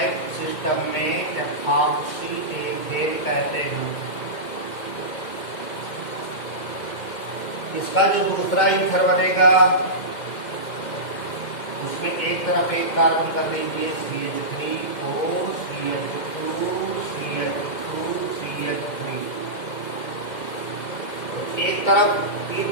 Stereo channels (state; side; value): late; right; 2.1 ms